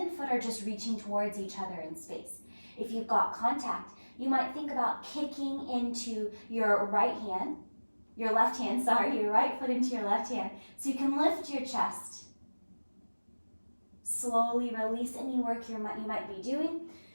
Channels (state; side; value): inverted; both; correlation -1.00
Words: foot are just reaching towards each other in space. If you've got contact, you might think about kicking into your right hand, your right foot into your left hand, so you can lift your chest. Slowly release any work you might be doing.